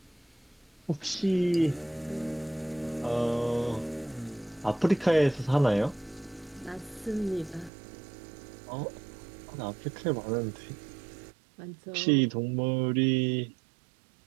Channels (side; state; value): left; drops out; at 7.7 s